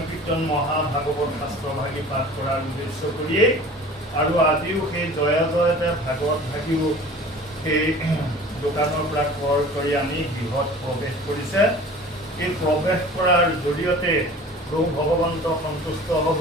মহাভাগৱত শাস্ত্ৰভাগী পাঠ কৰাৰ উদ্দেশ্য কৰিয়েই আৰু আজিও সেই জয় জয়তে ভাগৱত ভাগীও সেই দোকানৰ পৰা ক্ৰয় কৰি আনি গৃহত প্ৰৱেশ কৰিছে। এই প্ৰৱেশ কৰাৰ জৰিয়তে প্ৰভু ভগৱন্ত সন্তুষ্ট হ'ব,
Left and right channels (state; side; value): normal; both; correlation 0.43